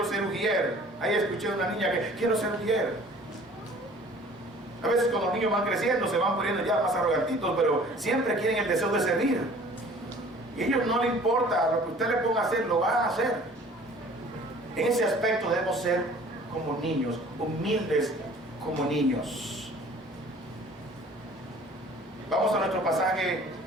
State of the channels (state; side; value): normal; both; correlation 0.50